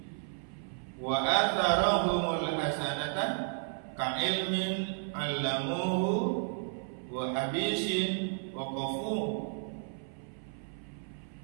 Wa atharahumul hasanatan, ka ilmin 'allamuhu wa habisin wa qafu.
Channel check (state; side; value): silent; left; 56 dB below the other